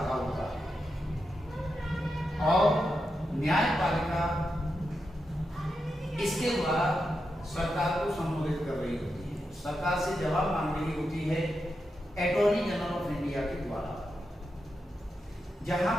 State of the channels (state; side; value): normal; both; correlation 0.87